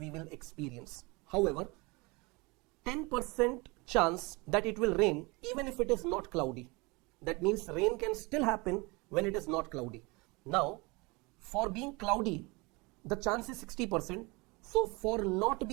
will experience. However, 10% chance that it will rain even if it is not cloudy. That means rain can still happen when it is not cloudy. Now, for being cloudy, the chance is 60%. So for not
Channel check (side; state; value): left; quieter; 26.2 dB